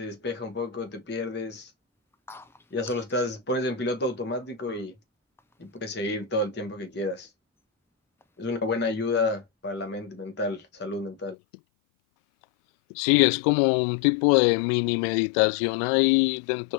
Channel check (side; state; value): right; drops out; at 11.4 s